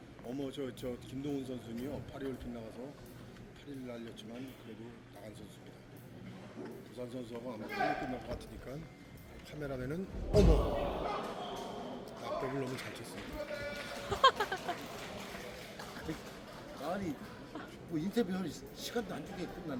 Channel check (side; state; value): both; identical; correlation 1.00